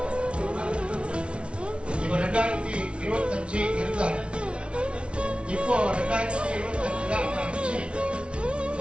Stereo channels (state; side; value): late; left; 0.059 ms